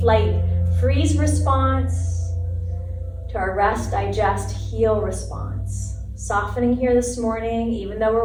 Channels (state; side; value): identical; both; correlation 1.00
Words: freeze response to our rest, digest, heal response. Softening here this morning, even though